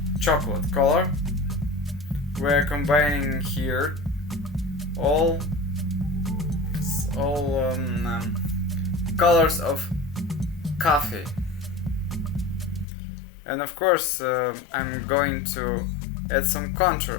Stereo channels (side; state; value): right; drops out; at 12.9 s